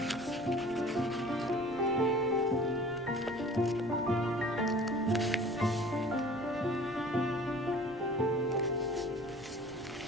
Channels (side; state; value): left; noise; rumble, 24 dB below the sound